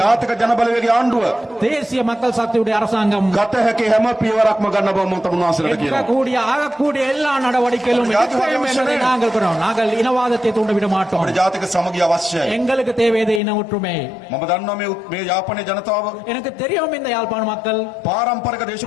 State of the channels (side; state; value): right; drops out; at 13.4 s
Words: ජාතික ජනබලවේගයේ ආණ්ඩුව தேசிய மக்கள் சக்தியுடைய அரசாங்கம் ගත හැකි හැම පියවරක්ම ගන්න බව මම තමුන්වහන්සේලාට කියනවා. எடுக்கக்கூடிய ஆகக்கூடிய எல்லா நடவடிக்கைகளும் எடுப்போம் என்பதை நாங்கள் கூறுகிறோம். நாங்கள் இனவாதத்தை தூண்டிவிட மாட்டோம். අපේ ජාතික සමගිය අවශ්‍යයි. எங்களுக்கு தேவையது இன ஒற்றுமை. මම දන්නවා මේ යාපනයේ ජනතාව எனக்கு தெரியும் இந்த யாழ்ப்பாண மக்கள் පාරම්පරික